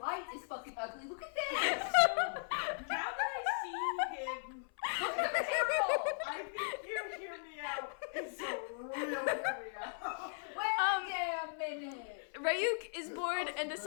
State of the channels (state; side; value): silent; right; 53 dB below the other